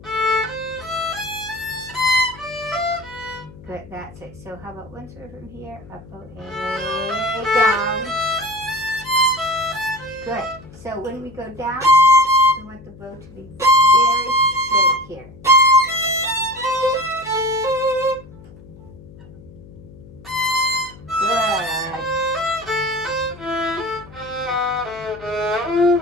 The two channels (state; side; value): noise; left; hum, 20 dB below the sound